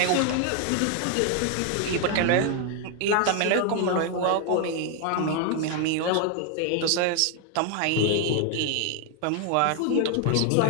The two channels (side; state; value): both; different; correlation 0.01